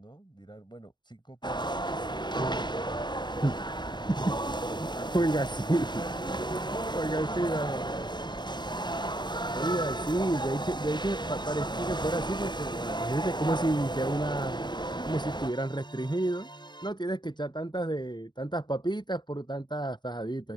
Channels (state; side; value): late; right; 0.21 ms